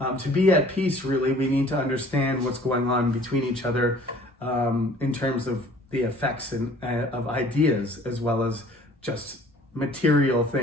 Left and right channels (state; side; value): normal; both; correlation 0.52